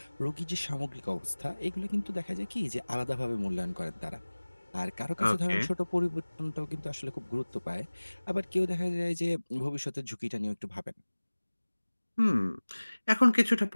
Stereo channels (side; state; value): both; inverted; correlation -1.00